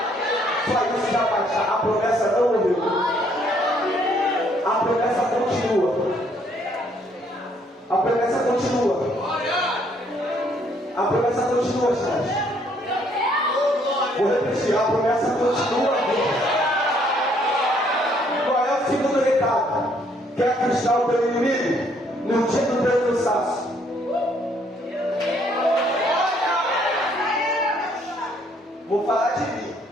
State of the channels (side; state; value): both; normal; correlation 0.66